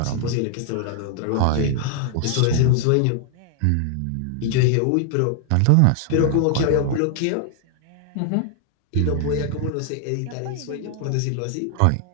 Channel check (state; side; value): different; both; correlation 0.00